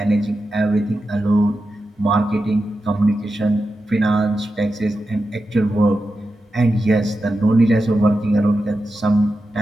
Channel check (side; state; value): both; normal; correlation 0.90